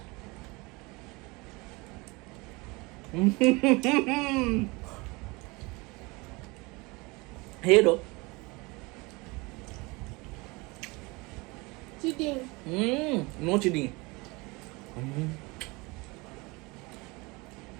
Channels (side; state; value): left; quieter; 25.3 dB